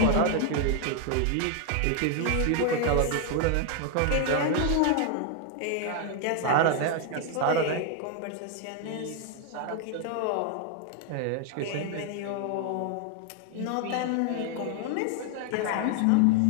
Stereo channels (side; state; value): both; different; correlation 0.00